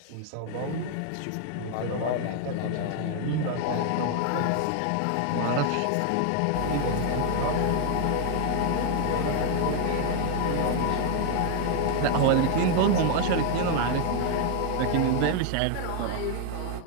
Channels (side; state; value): both; different; correlation 0.00